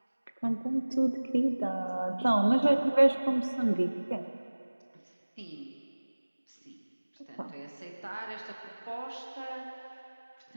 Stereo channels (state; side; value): inverted; both; correlation -1.00